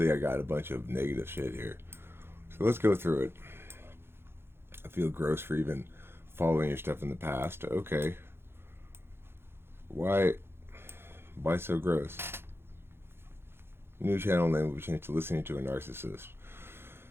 I got a bunch of negative shit here, so let's go through it. I feel gross for even following your stuff in the past. Okay, why so gross? New channel name will be changed to Listening to a Narcissist.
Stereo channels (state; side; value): late; left; 0.11 ms